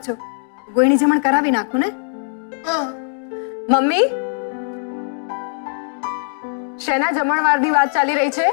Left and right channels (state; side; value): silent; right; digital silence